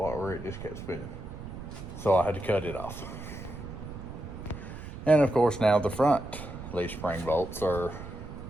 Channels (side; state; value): right; noise; rumble, 10 dB below the sound